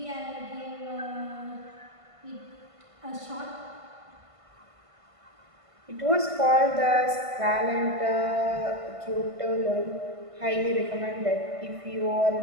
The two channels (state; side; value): late; left; 1.5 ms